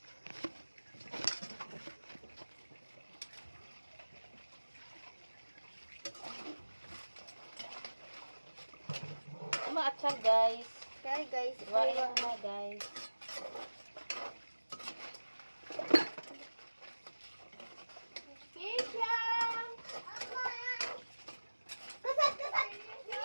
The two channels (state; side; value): inverted; both; correlation -1.00